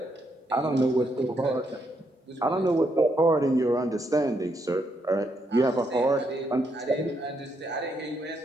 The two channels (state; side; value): normal; both; correlation 0.77